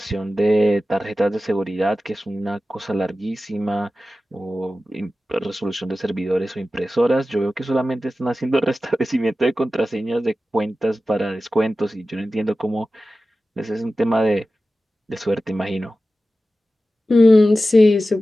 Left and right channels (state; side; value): normal; both; correlation 0.94